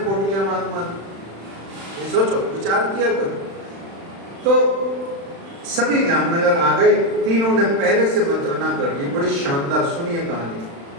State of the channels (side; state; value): left; late; 36 ms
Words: मान। ये सोचो, विचार किया करो। तो सभी जामनगर आ गए, तीनों ने पहले से मंत्रणा कर ली। बड़ी शानदार, सुनिए कहानी,